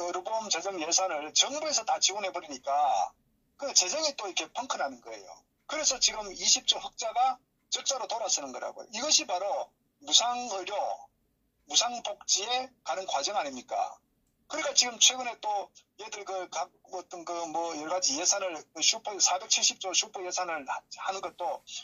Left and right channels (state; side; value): identical; both; correlation 1.00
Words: 의료보험 재정 예산을 정부에서 다 지원해버리니까 그 재정이 또 이렇게 펑크나는 거예요. 그래서 지금 20조 흑자가 적자로 돌아서는 거라고요. 이것이 바로 무상의료, 무상복지에 가는 과정 아닙니까? 그러니까 지금 최근에 또 얘들 각 어떤 뭐 여러 가지 예산을 슈퍼 470조 슈퍼 예산을 하는 것도